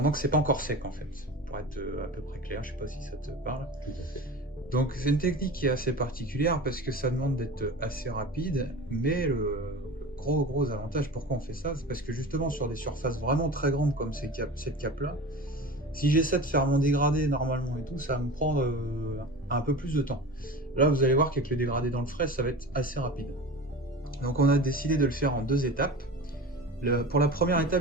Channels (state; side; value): normal; both; correlation 0.33